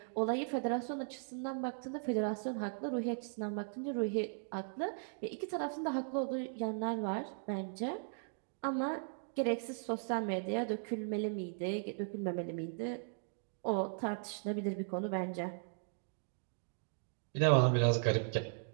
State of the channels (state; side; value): silent; left; digital silence